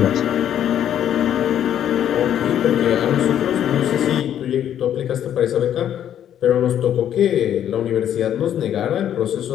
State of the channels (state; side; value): quieter; right; 10.3 dB